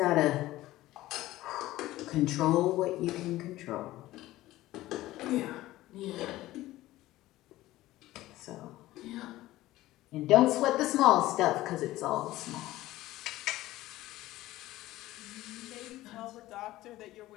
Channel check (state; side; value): quieter; right; 16.4 dB